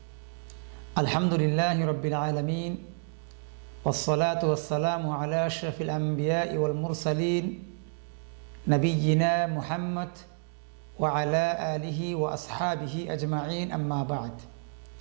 আলহামদুলিল্লাহি রাব্বিল আলামিন ওয়াসসালাতু ওয়াসসালামু আলা আশরাফিল আমবিয়াই ওয়াল মুরসালিন নবিয়িনা মুহাম্মদ ওয়া আলা আলিহি ওয়া আসহাবিহি আজমাইন, আম্মা বা'দ।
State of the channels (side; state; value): left; silent; 58 dB below the other